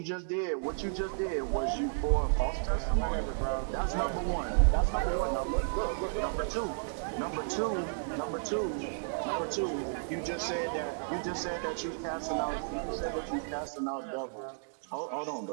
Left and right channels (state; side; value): silent; left; digital silence